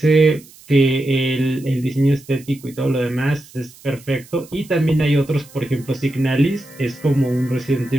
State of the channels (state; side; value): noise; right; hiss, 23 dB below the sound